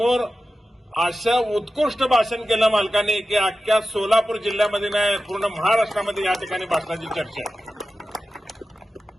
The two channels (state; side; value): normal; both; correlation 0.93